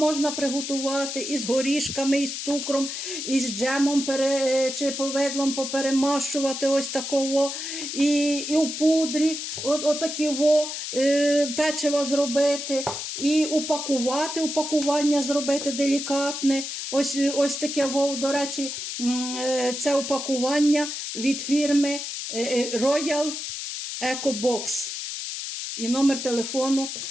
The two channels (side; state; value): left; noise; hiss, 6 dB below the sound